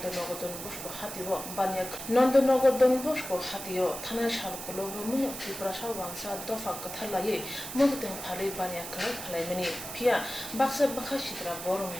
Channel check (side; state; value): right; noise; hiss, 9 dB below the sound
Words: Donbosko Hatio, Banyak, Nondonogo Donbosko Hatio, Tana Shalkolo, Rumuno, Tibrasha Wansa, Dofa Katalaye, Mugden Pale Banya Palamini, Pia, Baxa Bakashitra, Borum,